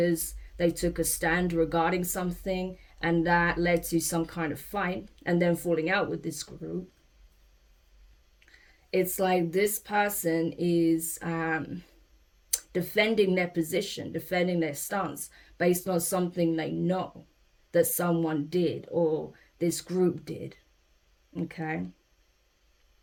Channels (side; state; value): both; identical; correlation 1.00